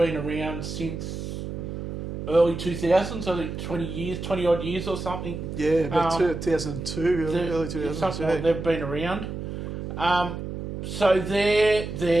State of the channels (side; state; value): right; noise; hum, 7 dB below the sound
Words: around since early 2000s, I think 20 odd years or something. Yeah, about 2002, early 2002. Something like they've been around. So they're